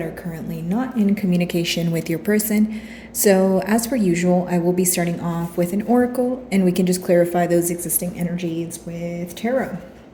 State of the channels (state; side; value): identical; both; correlation 1.00